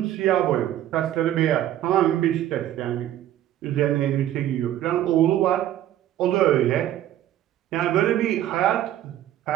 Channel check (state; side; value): quieter; left; 12.4 dB